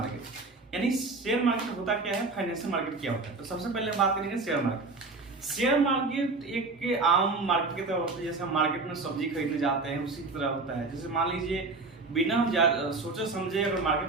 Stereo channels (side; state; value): left; quieter; 3.7 dB